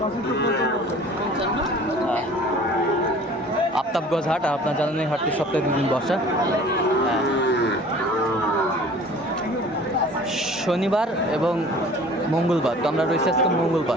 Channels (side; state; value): both; normal; correlation 0.47